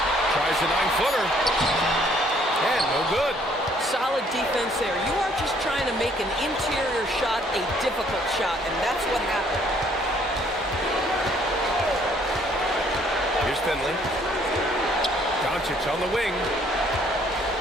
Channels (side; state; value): both; normal; correlation 0.63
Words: Tries a 9-footer. And no good. Solid defense there. You are just trying to make an interior shot a difficult shot, and that's what happened. Here's Finley. Doncic on the wing.